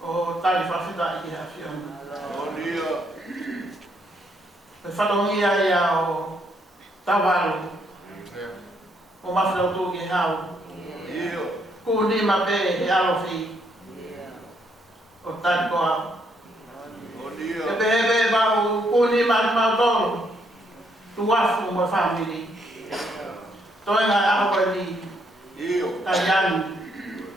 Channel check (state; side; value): normal; both; correlation 0.73